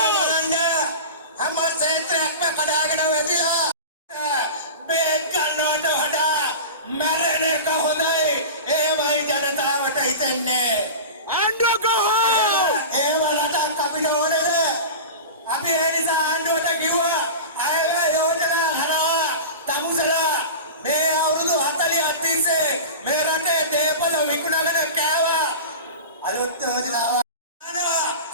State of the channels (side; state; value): both; inverted; correlation -0.31